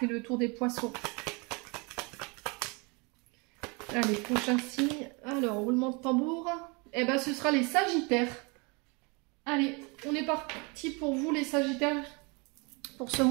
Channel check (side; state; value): left; quieter; 30.2 dB